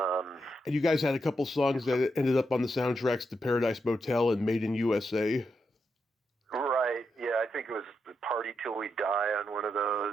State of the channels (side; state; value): both; normal; correlation 0.84